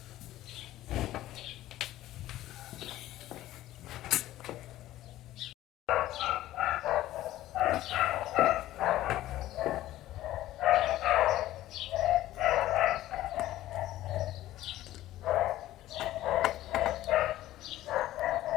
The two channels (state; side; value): quieter; right; 14.7 dB